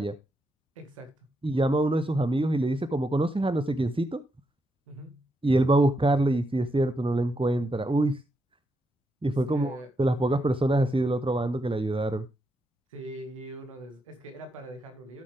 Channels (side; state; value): both; normal; correlation 0.82